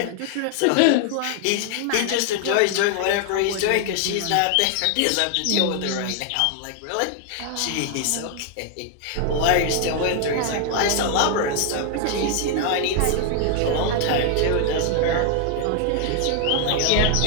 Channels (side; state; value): both; different; correlation 0.00